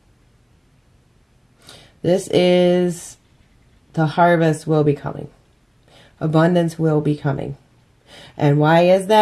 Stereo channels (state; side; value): identical; both; correlation 1.00